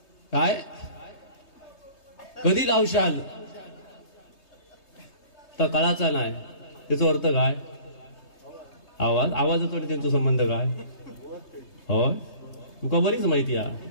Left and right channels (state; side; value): late; right; 3.2 ms